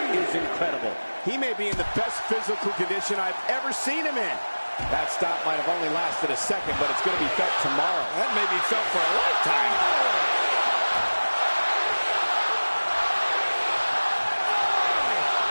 is incredible. He may be in the best physical condition I've ever seen him in. That stop might have only lasted a second, but it's going to be felt tomorrow. That may be felt for a lifetime.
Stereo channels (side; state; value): both; inverted; correlation -1.00